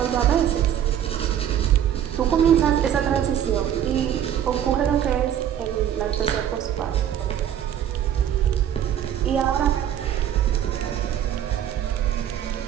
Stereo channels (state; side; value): quieter; left; 10.1 dB